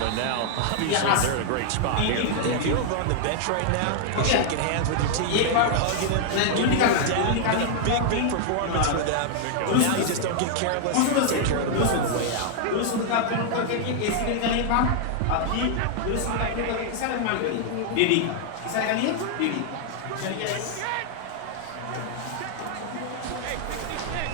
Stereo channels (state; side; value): different; both; correlation 0.00